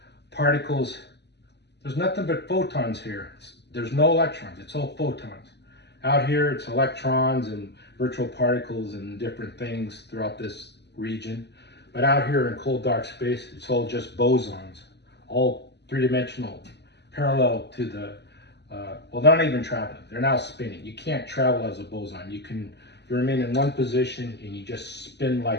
particles, there's nothing but photons here. There's no electrons, it's all photons. Out here, it's electrons and virtual particles and different things throughout this region. But out here in cold dark space, it's all just bosons, all three-dimensional, parallel to the, well, they're not even traveling, they're now spinning. You can't travel as a boson. You remain in one position and you just spin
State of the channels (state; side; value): late; right; 0.50 ms